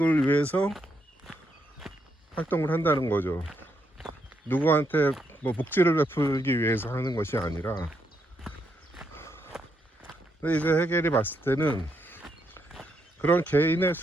위해서 활동을 한다는 거죠. 누구한테 뭐 복지를 베풀기 위해서 하는 것이 아니라. 근데 이제 해겔이 봤을 때는 그런 개인의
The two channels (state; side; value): normal; both; correlation 0.78